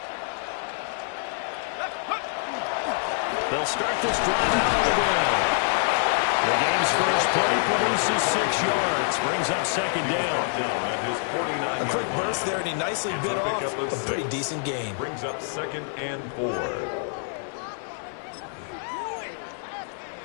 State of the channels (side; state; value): right; silent; 61 dB below the other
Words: They'll start this drive out on the ground. The game's first play produces 6 yards, brings up second down. A quick burst there, and he nicely bit off a pretty decent gain. Brings up 2nd and 4.